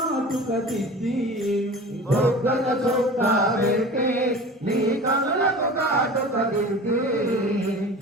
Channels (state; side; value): normal; both; correlation 0.37